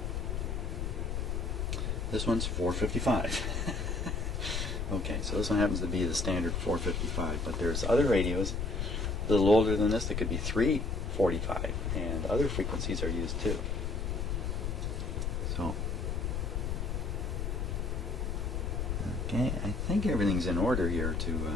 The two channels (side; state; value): left; noise; rumble, 1 dB below the sound